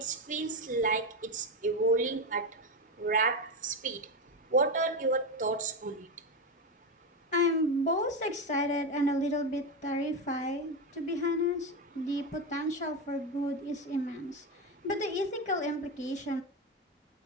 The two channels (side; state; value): both; normal; correlation 0.14